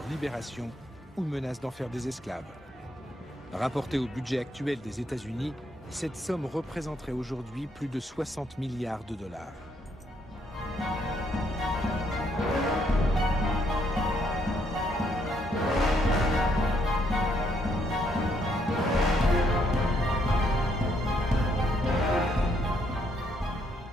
libération ou menacent d'en faire des esclaves. Rapporté au budget actuel des États-Unis, cette somme représenterait aujourd'hui plus de 60 milliards de $.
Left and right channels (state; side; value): normal; both; correlation 0.72